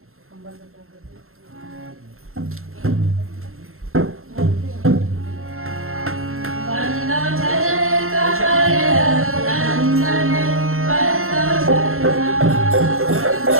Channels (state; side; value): late; left; 0.62 ms